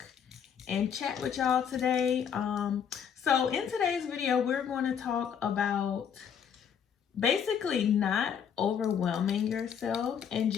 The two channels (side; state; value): right; quieter; 7.8 dB